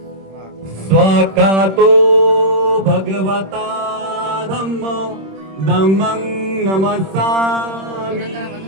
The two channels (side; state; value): left; late; 26 ms